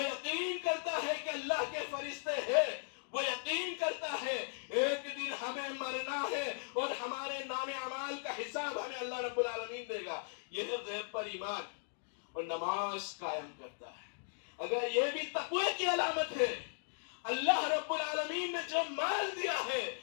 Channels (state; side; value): silent; right; digital silence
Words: یقین کرتا ہے کہ اللہ کے فرشتے ہیں، وہ یقین کرتا ہے ایک دن ہمیں مرنا ہے اور ہمارے نام اعمال کا حساب ہمیں اللہ رب العالمین دے گا. یہ ہے غیب پر ایمان. اور نماز قائم کرتا ہے. اگر یہ بھی تقوی کی علامت ہے، اللہ رب العالمین نے جو مال دیا ہے،